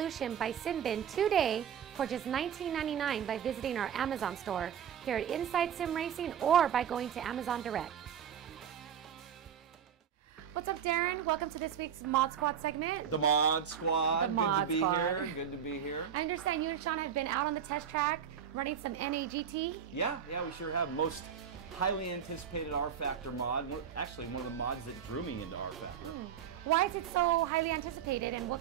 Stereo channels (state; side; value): quieter; left; 8.4 dB